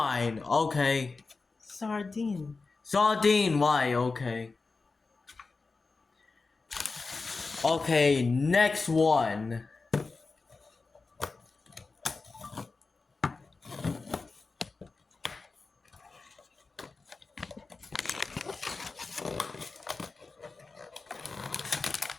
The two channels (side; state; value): right; quieter; 4.0 dB